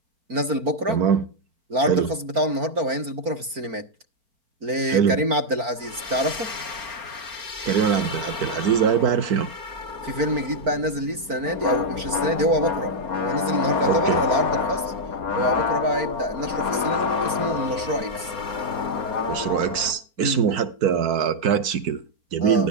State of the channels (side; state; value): left; late; 4.5 ms